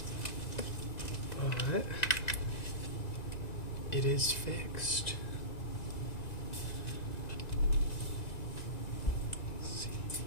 But it is fixed. Let's see.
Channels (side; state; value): right; late; 1.9 ms